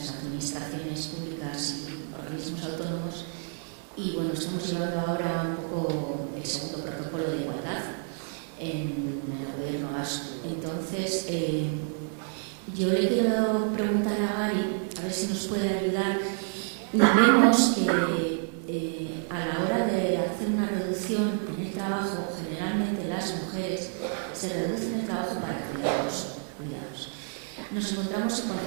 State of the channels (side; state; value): left; silent; 59 dB below the other